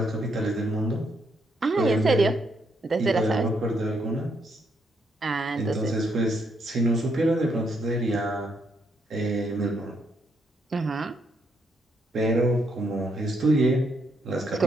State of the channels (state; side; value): normal; both; correlation 0.75